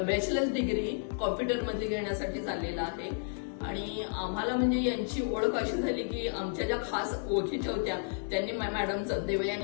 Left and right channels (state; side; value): silent; right; 57 dB below the other